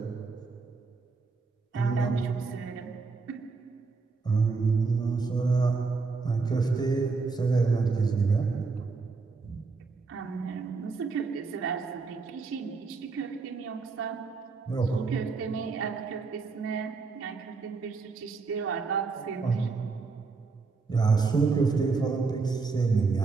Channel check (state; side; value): quieter; left; 4.4 dB